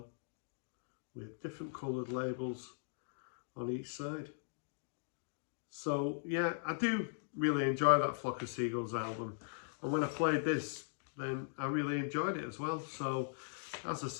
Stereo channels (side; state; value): right; silent; digital silence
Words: with different coloured labels on each side. So yeah, I do really enjoy that Flock of Seagulls album, and when I played this, then I really enjoyed it as well. So as I